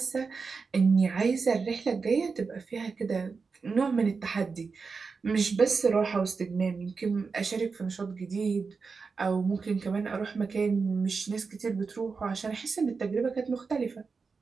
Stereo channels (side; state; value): left; quieter; 4.8 dB